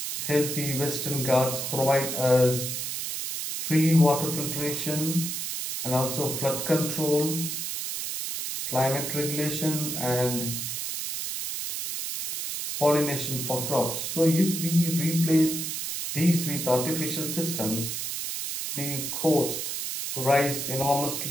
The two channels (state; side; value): noise; right; hiss, 4 dB below the sound